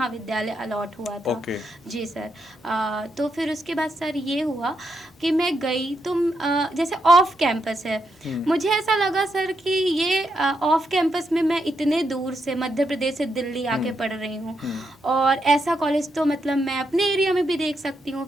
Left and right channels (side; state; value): both; normal; correlation 0.81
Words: अलॉट हुआ था। जी सर। तो फिर उसके बाद सर ये हुआ कि मैं गई तो जैसे ऑफ कैंपस है, मुझे ऐसा लगा सर कि ये ऑफ कैंपस में मैं इतने दूर से मध्य प्रदेश से दिल्ली आके पढ़ रही हूँ, और ऐसा कॉलेज तो मतलब मैं अपने एरिया में भी देख सकती हूँ।